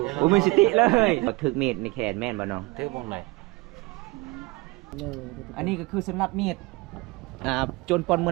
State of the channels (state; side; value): quieter; left; 23.8 dB